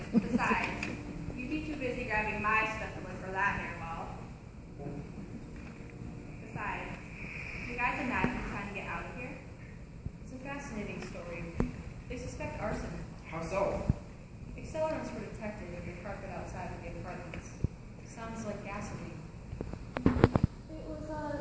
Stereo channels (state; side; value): identical; both; correlation 1.00